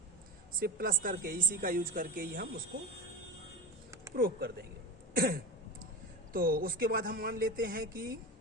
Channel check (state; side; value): normal; both; correlation 0.25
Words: सिर्फ प्लस करके, इसी का यूज करके ही हम उसको प्रूव कर देंगे। तो उसके बाद हम मान लेते हैं कि